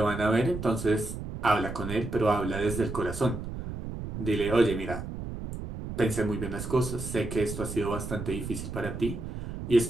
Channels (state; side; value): noise; right; rumble, 7 dB below the sound